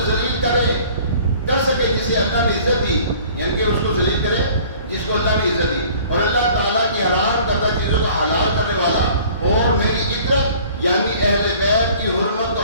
ذلیل کر سکے جسے اللہ نے عزت دی، یعنی کہ اس کو ذلیل کرے جس کو اللہ نے عزت دی، اور اللہ تعالیٰ کی حرام کردہ چیزوں کو حلال کرنے والا اور میری عطرت یعنی اہل بیت کی حرمت کو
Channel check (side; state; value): both; inverted; correlation -0.50